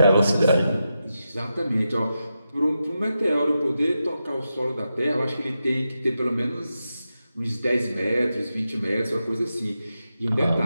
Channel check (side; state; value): both; inverted; correlation -0.88